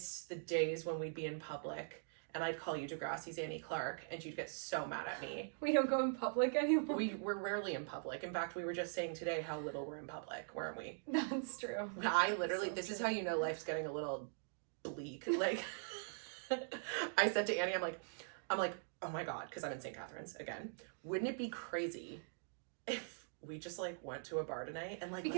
the days when we'd be in public, and I'd call you Degrassi's Annie Clark, and you'd get so mad at me. We don't go in public anymore. We're rarely in public. In fact, we were just saying today how little we're in public, weren't we? That's true. I literally, this is how you know life's getting a little bleak. Like, I said to Annie, I'm like, oh my God, because I'm in St. Catharines again. Wouldn't it be crazy if we just like went to a bar tonight and like,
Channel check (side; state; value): left; silent; digital silence